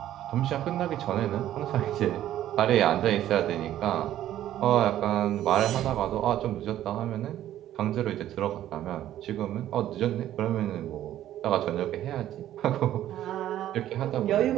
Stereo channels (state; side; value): quieter; left; 12.5 dB